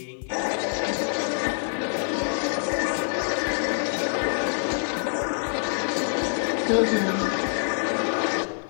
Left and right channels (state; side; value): silent; right; 56 dB below the other